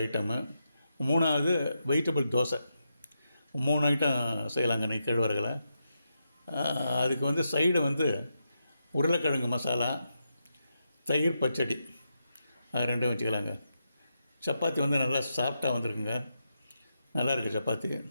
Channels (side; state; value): both; inverted; correlation -0.85